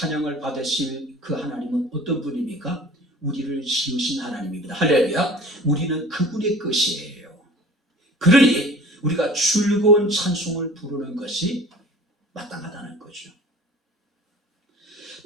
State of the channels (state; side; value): normal; both; correlation 0.44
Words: 받으실 그 하나님은 어떤 분입니까? 우리를 지으신 하나님입니다. 할렐루야. 우리는 그분의 것이에요. 그러니 우리가 즐거운 찬송을 부르는 것이 마땅하다는 거죠.